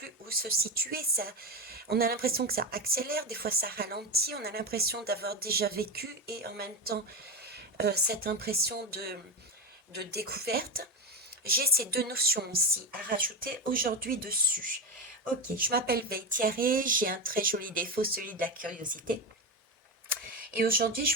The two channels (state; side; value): normal; both; correlation 0.16